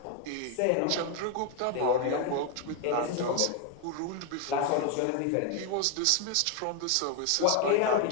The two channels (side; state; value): both; different; correlation 0.01